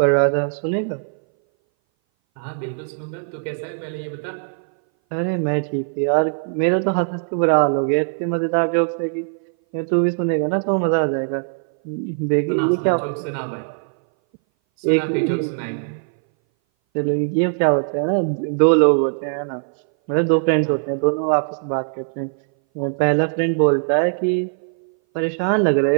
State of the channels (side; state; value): left; silent; 60 dB below the other